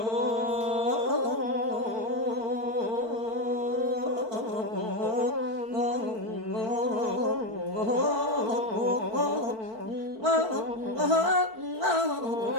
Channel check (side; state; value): left; late; 4.5 ms